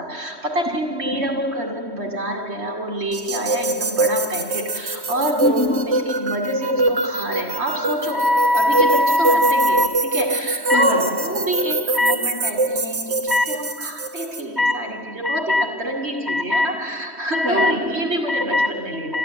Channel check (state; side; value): late; left; 3.1 ms